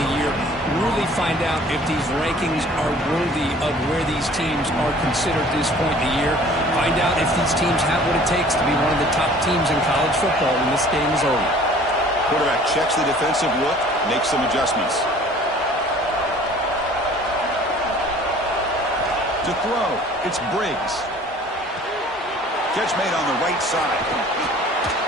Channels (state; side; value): normal; both; correlation 0.50